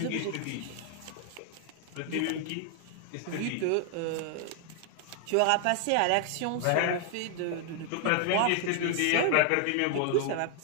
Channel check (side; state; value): both; different; correlation 0.00